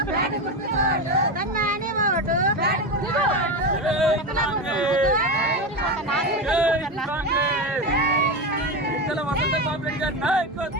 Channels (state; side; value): normal; both; correlation 0.17